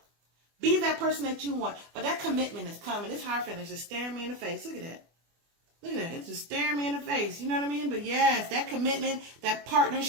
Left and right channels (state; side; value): late; left; 24 ms